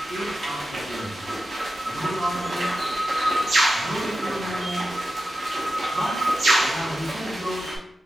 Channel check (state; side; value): normal; both; correlation 0.92